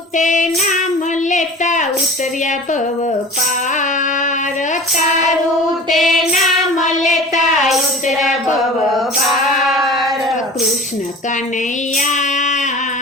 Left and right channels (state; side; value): normal; both; correlation 0.38